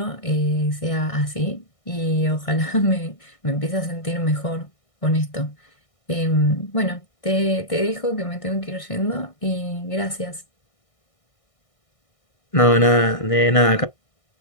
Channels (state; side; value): late; right; 1.6 ms